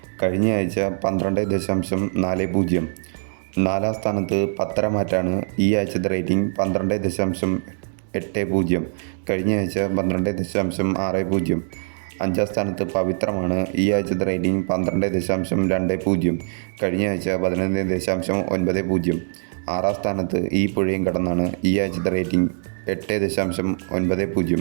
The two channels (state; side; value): silent; left; digital silence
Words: കഴിഞ്ഞ ആഴ്ച 12.40. നാലാം സ്ഥാനത്ത് പത്തരമാറ്റാണ്. ഈ ആഴ്ചത്തെ റേറ്റിംഗ് 12.80. കഴിഞ്ഞ ആഴ്ച 12.60. അഞ്ചാം സ്ഥാനത്ത് പവിത്രമാണ്. ഈ ആഴ്ചത്തെ റേറ്റിംഗ് 12.20. കഴിഞ്ഞ ആഴ്ച 11.90. ആറാം സ്ഥാനത്ത് ഈ പുഴയും കടന്നാണ്. ഈ ആഴ്ചത്തെ റേറ്റിംഗ് 8.90.